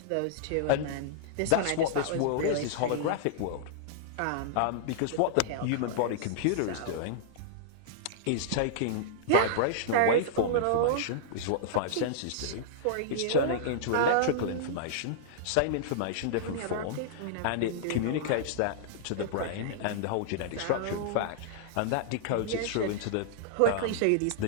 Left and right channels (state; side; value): different; both; correlation -0.02